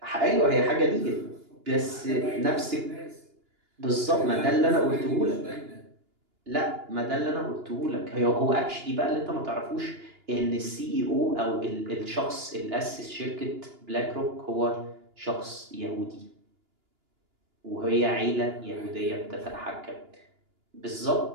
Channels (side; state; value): left; late; 2.9 ms